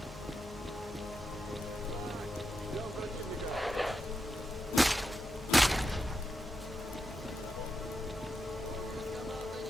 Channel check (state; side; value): normal; both; correlation 0.87